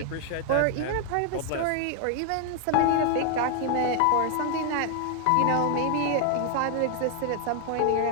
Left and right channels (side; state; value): both; different; correlation 0.00